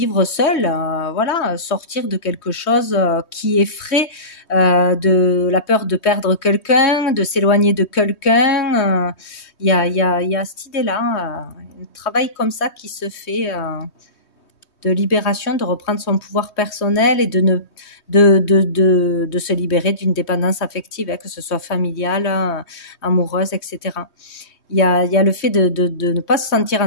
seul, voilà, sortir de quelque chose qui effraie, de la peur de perdre quelqu'un, de s'éloigner de quelqu'un. Il y a cette idée-là, un travail comme ça qui se fait de libération, de reprendre son pouvoir personnel et de se libérer d'une dépendance affective, que ce soit familiale, amoureuse, etc. Il y a le fait de ne pas se sentir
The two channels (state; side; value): late; right; 3.2 ms